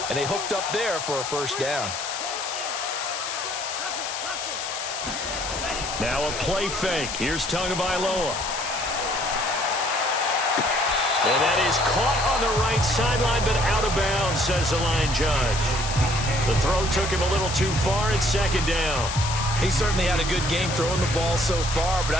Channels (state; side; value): noise; left; hiss, 5 dB below the sound